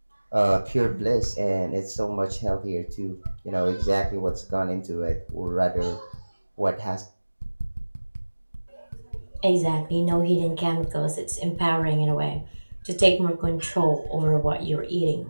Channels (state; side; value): inverted; both; correlation -1.00